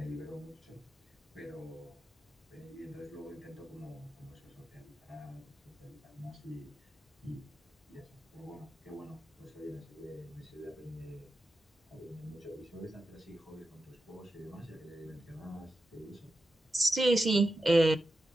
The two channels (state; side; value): normal; both; correlation 0.90